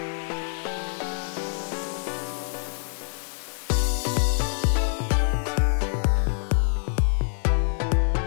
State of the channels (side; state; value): right; silent; 60 dB below the other